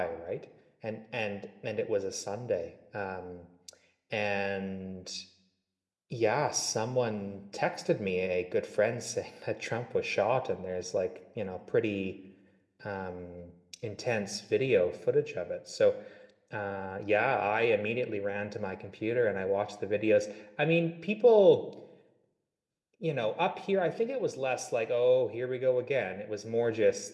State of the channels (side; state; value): both; identical; correlation 1.00